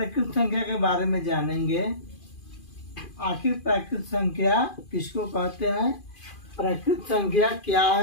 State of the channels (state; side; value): late; right; 2.5 ms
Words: संख्या के बारे में जानेंगे। आखिर प्राकृत संख्या किसको कहते हैं, प्राकृत संख्या क्या